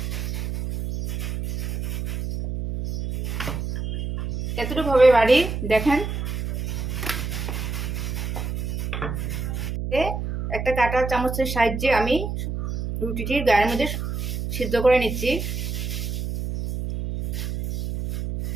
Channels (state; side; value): noise; right; hum, 3 dB below the sound